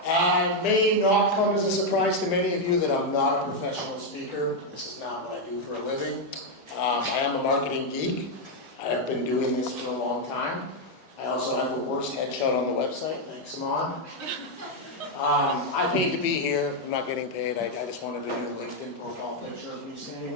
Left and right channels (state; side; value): normal; both; correlation 0.01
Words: May not come as a surprise to many of you that I'm not a professional speaker. This is not what I do for a living. I am a marketing geek. I have been doing this for a long time. I also have the worst headshot on the website. Thanks, Amon. I paid to be here. I'm not getting paid. I just wanted a new LinkedIn profile picture of me standing